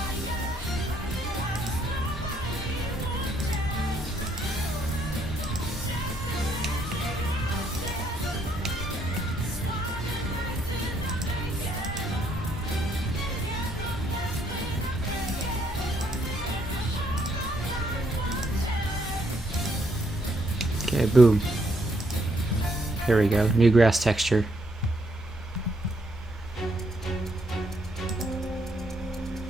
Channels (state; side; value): normal; both; correlation 0.72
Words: Okay, boom. There we go. New grass texture.